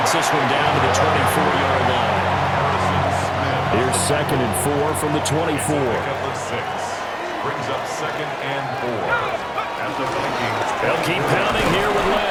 this one down to the 24-yard line. Here's 2nd and 4 from the 24. Brings up 2nd and 4. At the Vikings. They'll keep pounding here with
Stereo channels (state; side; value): identical; both; correlation 1.00